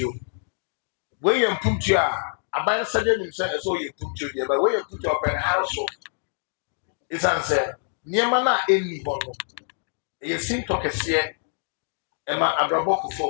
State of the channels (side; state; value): right; silent; digital silence